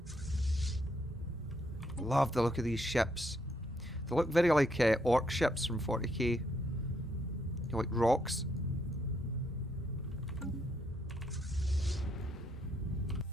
Love the look of these ships. They look very like orc ships from 40k. They're like rocks.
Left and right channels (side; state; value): both; normal; correlation 0.75